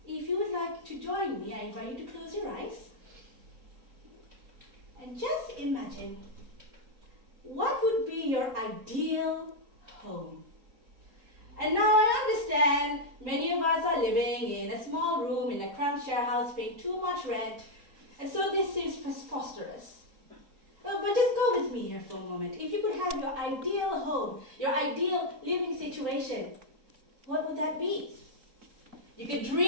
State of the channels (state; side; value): late; left; 3.8 ms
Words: If you would like to join me, I invite you to close your eyes. And just imagine, what would be your ideal home? And now I understand many of us are living in a small room in a cramped share house paying too much rent, and so this seems preposterous. But just go with me here for a moment. If you could have your ideal home, your ideal living situation, what would that be? You could